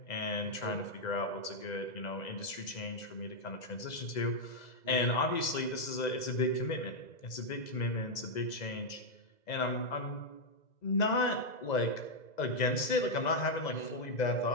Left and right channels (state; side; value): late; right; 2.0 ms